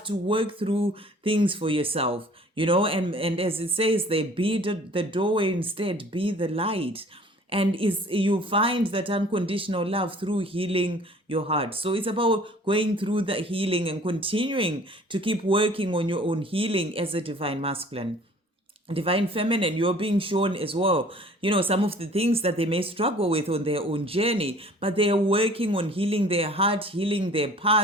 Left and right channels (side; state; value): both; normal; correlation 0.51